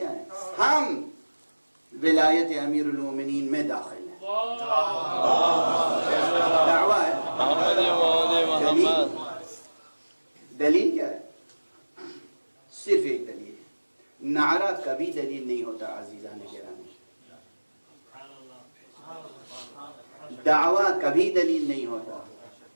ہے؟ ہم ولایت امیر المومنین میں داخل ہیں. دعویٰ ہے. دلیل کیا ہے؟ صرف ایک دلیل ہے. نعرہ کبھی دلیل نہیں ہوتا عزیزان گرامی. دعویٰ کبھی دلیل نہیں ہوتا.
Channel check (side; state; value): both; inverted; correlation -1.00